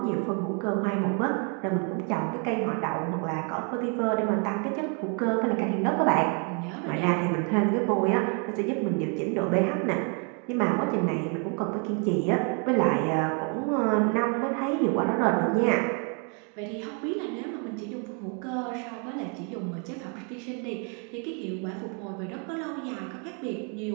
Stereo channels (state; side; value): quieter; left; 37.9 dB